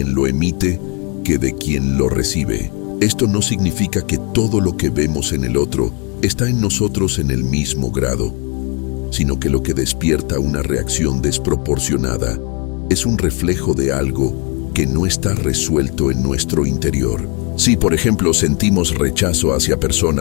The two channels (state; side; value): quieter; right; 31.9 dB